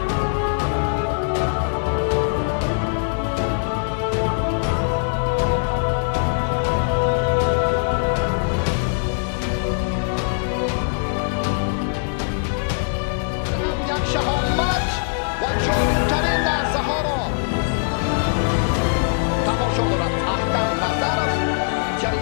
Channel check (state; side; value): silent; right; digital silence